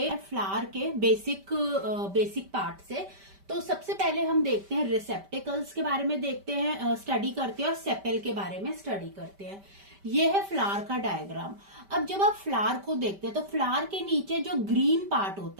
फ्लावर के बेसिक पार्ट से। तो सबसे पहले हम देखते हैं रिसेप्टिकल्स के बारे में देखते हैं, स्टडी करते हैं और सेपेल के बारे में स्टडी करते हैं। ये है फ्लावर का डायग्राम। अब जब आप फ्लावर को देखते हैं तो फ्लावर के नीचे जो ग्रीन पार्ट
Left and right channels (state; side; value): late; left; 5.1 ms